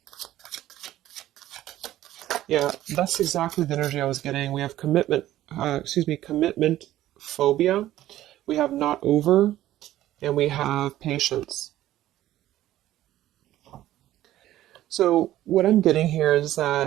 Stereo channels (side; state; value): left; quieter; 13.9 dB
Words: Yeah, that's exactly the energy I was getting. We have commitment phobia. We have not over, and we have patience. So what I'm getting here is